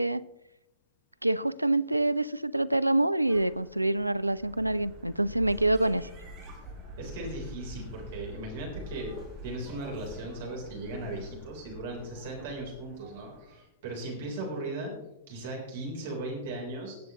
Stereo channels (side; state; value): both; inverted; correlation -0.83